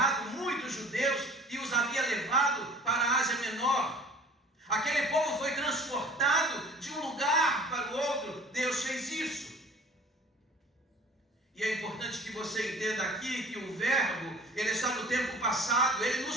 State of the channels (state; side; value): normal; both; correlation 0.47